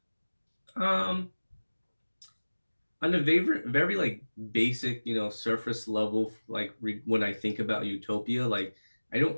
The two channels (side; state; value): both; inverted; correlation -1.00